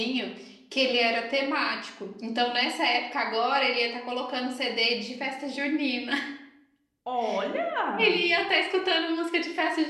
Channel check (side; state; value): both; identical; correlation 1.00